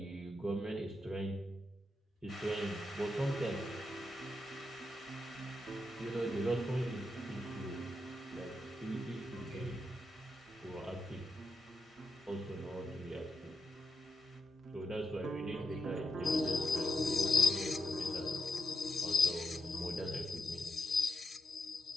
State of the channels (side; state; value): both; normal; correlation 0.84